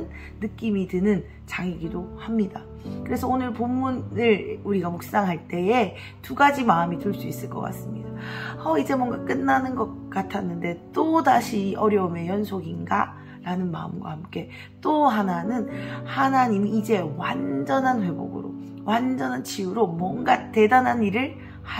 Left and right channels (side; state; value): both; identical; correlation 1.00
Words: 느낌이 드는 장이기도 합니다. 그래서 오늘 본문을 우리가 묵상할 때에 두 가지 마음이 들 수 있을 것 같습니다. 이제 뭔가 끝나는 것 같았는데 또 다시 어려움의 연속인가? 라는 마음과 함께, 또 하나는 하나님이 이제 완전한 회복으로, 완전한 치유로 뭔가 대단한 일을